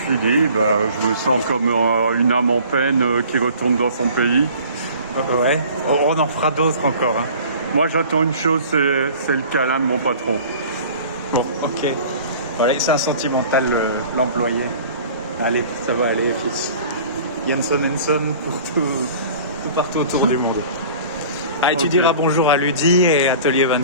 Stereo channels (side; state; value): both; inverted; correlation -0.46